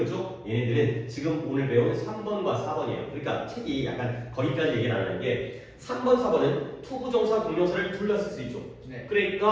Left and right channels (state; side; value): identical; both; correlation 1.00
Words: 얘네들은 지금 오늘 배운 3번과 4번이에요. 그러니까 책이 약간 거기까지 얘기를 안 하는 게 3번, 4번은 투부정사, 동명사를 둘 다 쓸 수 있죠. 네.